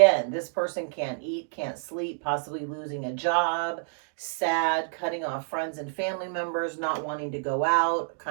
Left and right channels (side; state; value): left; silent; digital silence